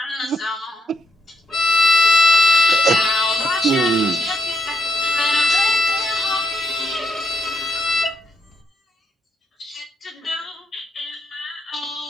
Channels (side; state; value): both; normal; correlation 0.79